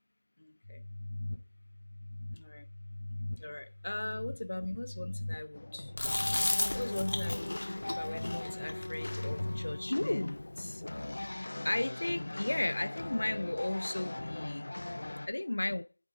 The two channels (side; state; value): both; inverted; correlation -1.00